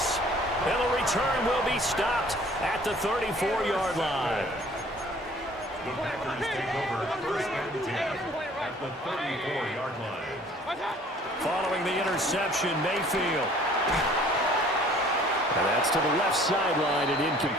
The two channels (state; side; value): normal; both; correlation 0.54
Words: And the return will be stopped at the 34-yard line. The Packers take over first and 10 at the 34-yard line. Following the interception, Mayfield. And that's to the left sideline and